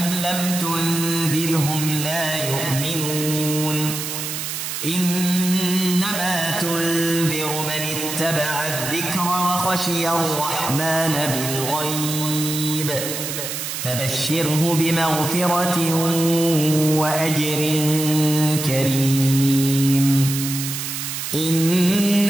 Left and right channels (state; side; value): noise; right; hiss, 5 dB below the sound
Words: لم تنذرهم لا يؤمنون إنما تنذر من اتبع الذكر وخشي الرحمن بالغيب فبشره بمغفرة وأجر كريم.